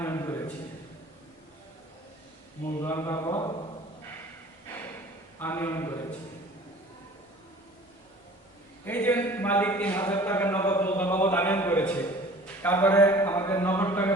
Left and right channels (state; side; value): normal; both; correlation 0.46